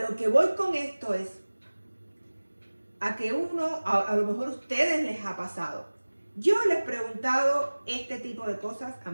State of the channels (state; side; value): inverted; both; correlation -1.00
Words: que voy con esto es a que a lo mejor a ustedes les ha pasado. Yo les he preguntado este tipo de cosas a